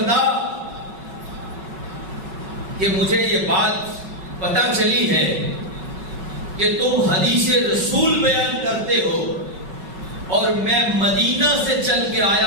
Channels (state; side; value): late; left; 5.3 ms